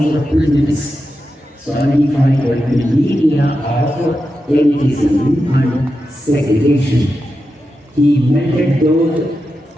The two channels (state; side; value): normal; both; correlation 0.89